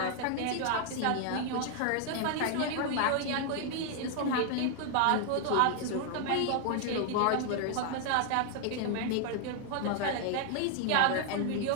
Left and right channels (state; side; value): different; both; correlation 0.00